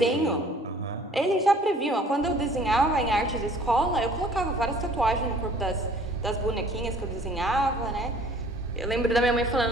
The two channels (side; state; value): both; normal; correlation 0.53